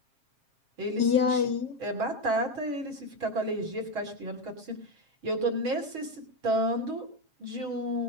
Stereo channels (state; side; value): late; left; 7.4 ms